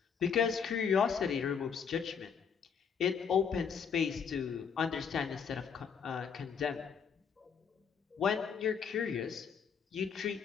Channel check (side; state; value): right; quieter; 6.7 dB